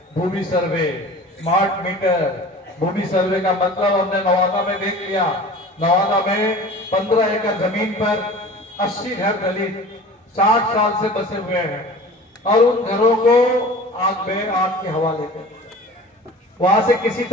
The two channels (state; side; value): normal; both; correlation 0.41